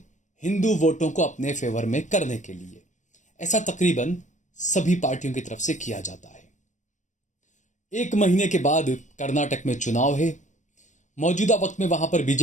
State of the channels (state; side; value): late; right; 0.35 ms